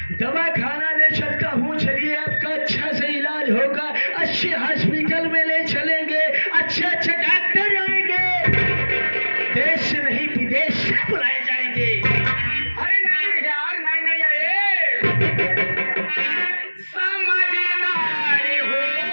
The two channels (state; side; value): inverted; both; correlation -1.00